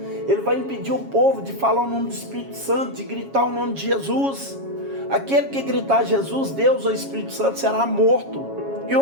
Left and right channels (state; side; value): late; left; 7.3 ms